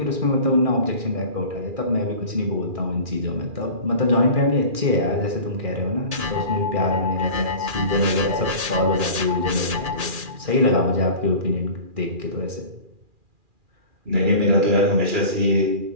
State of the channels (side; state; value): left; late; 2.4 ms